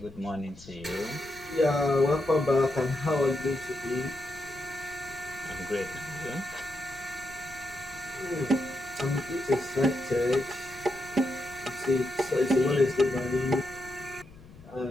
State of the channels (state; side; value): noise; left; rumble, 21 dB below the sound